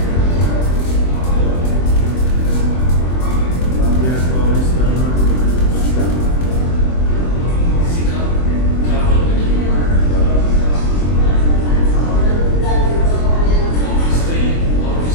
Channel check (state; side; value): late; right; 24 ms